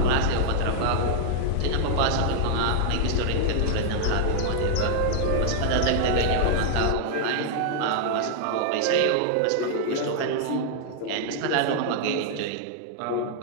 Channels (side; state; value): both; different; correlation -0.01